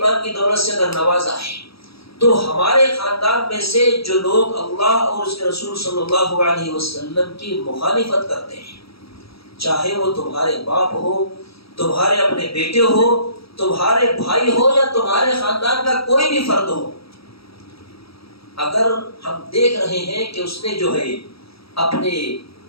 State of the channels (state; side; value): late; right; 0.76 ms